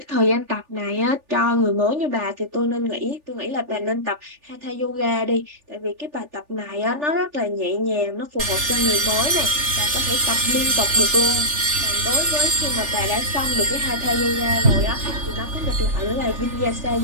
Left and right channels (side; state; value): left; late; 3.4 ms